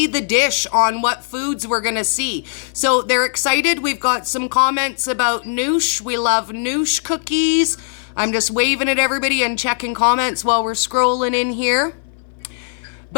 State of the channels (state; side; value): silent; right; 59 dB below the other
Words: the dish on what foods we're going to see. So they're excited. We've got some comments about noosh. We love noosh cookies. I'm just waving at everybody and checking comments while we're scrolling in here.